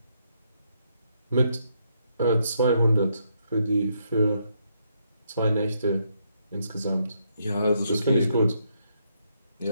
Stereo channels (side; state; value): both; inverted; correlation -0.76